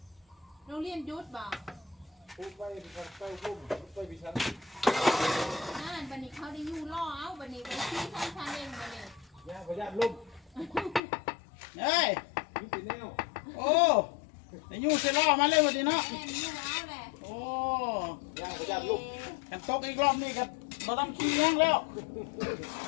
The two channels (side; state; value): right; drops out; at 11.0 s